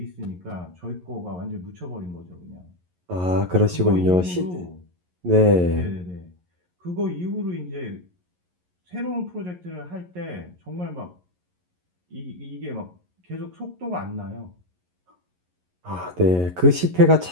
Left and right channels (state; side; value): late; left; 11 ms